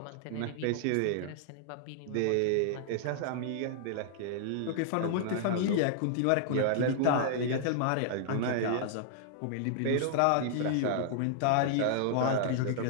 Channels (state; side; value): different; both; correlation -0.01